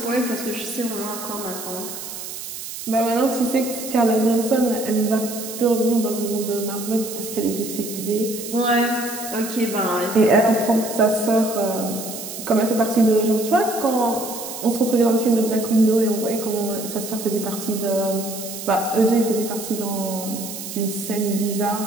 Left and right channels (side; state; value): right; noise; hiss, 9 dB below the sound